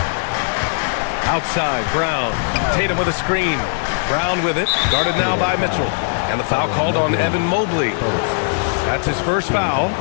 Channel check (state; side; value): silent; right; 58 dB below the other